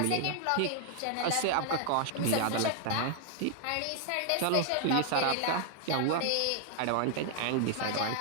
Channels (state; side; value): different; both; correlation 0.00